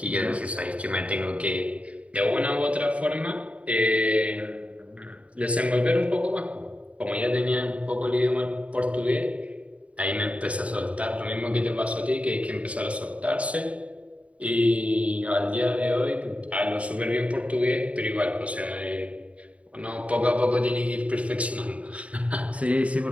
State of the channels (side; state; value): left; late; 0.065 ms